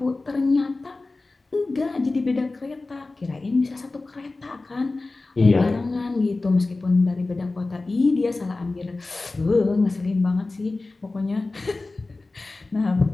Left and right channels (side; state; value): right; quieter; 3.3 dB